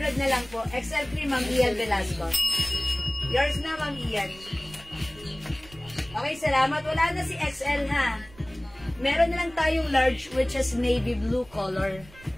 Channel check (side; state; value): right; noise; rumble, 22 dB below the sound